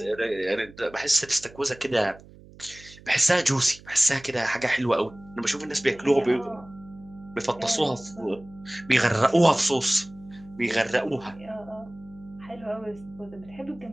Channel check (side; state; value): right; noise; hum, 21 dB below the sound